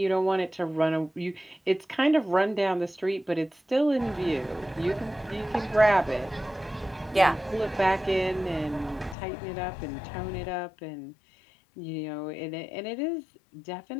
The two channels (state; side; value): drops out; right; at 9.2 s